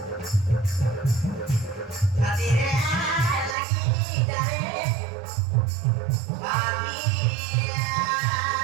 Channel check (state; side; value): drops out; left; at 3.6 s